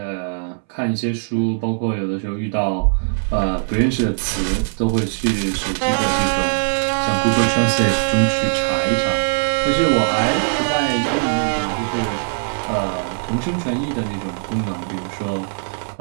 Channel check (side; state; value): left; silent; 65 dB below the other